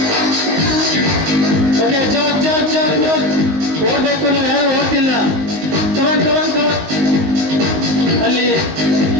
ಓಕೆ, ಜಾಗ್ ಜಾಗ್ ಜಾಗ್ ಜಾಗ್. ಓಡ್ಬೇಕು, ನೀವು ಯಾರು ಓಡ್ತಿಲ್ಲ. ಕಮಾನ್ ಕಮಾನ್ ಕಮಾನ್. ಅಲ್ಲಿ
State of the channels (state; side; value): late; left; 19 ms